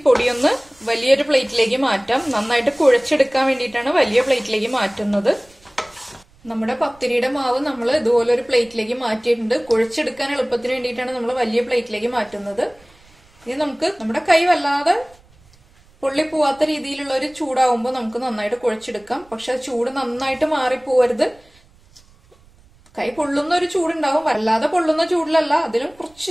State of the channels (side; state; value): right; noise; rumble, 29 dB below the sound